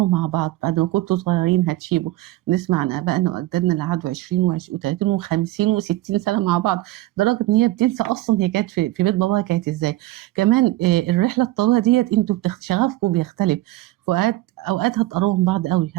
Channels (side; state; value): left; quieter; 17.0 dB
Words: مع بعض. بعد ما كنتوا صغيرين هتشيبوا. نسمع عن ابائنا واجدادنا اللي قعدوا 20 و30 و50 و60 سنه مع بعض، لدرجه ان هي بتنسى اصلا هي كانت في بيت باباها كانت ازاي. كمان الرحله الطويله ديت انتوا شغفكم بيختلف. اوقات هتقربوا من بعض قوي،